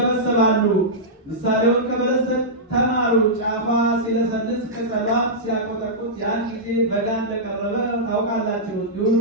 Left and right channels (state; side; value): normal; both; correlation -0.12